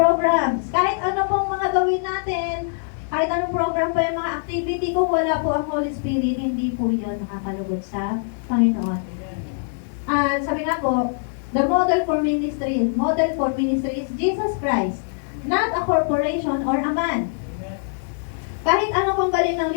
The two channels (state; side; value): silent; right; digital silence